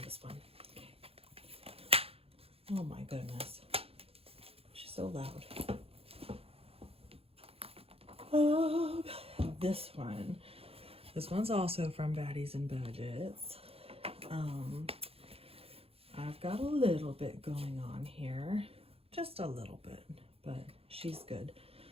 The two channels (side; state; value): left; late; 0.28 ms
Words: one. Okay. Oh my goodness. so loud. This one's also from Baddies and Budgets. I've got a little bit going on here, just a little bit, but she's good.